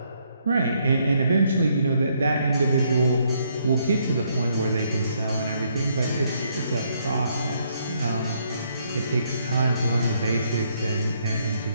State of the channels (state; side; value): inverted; both; correlation -0.72